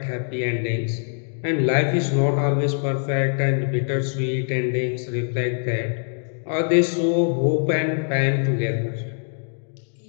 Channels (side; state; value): right; silent; digital silence